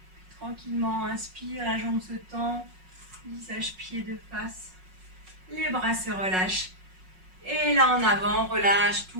Puis tranquillement, inspire, la jambe se tend. Visage pied de face. Les bras se relâchent. Et là en avant, on relâche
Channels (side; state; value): left; late; 5.5 ms